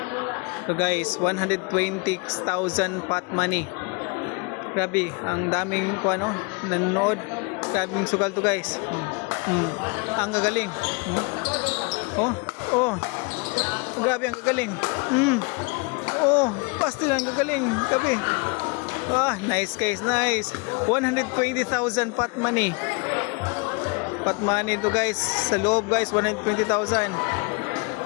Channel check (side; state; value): right; quieter; 30.3 dB